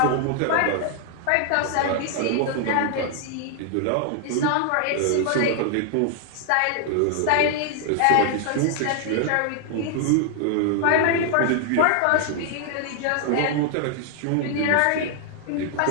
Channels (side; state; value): both; different; correlation 0.00